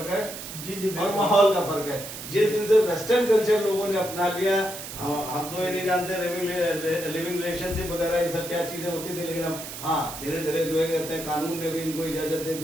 है जी और माहौल का फर्क है। जिस दिन से वेस्टर्न कल्चर लोगों ने अपना लिया, हम तो ये नहीं जानते लिविंग रिलेशनशिप वगैरह ये सब क्या चीजें होती थी, लेकिन अब हाँ धीरे धीरे जो है कहते हैं कानून ने भी इनको इजाजत दे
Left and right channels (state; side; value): noise; right; hiss, 10 dB below the sound